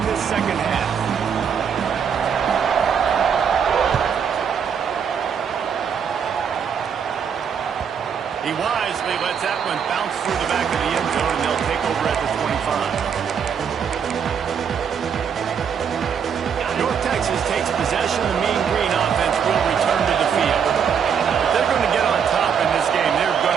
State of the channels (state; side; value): quieter; left; 7.3 dB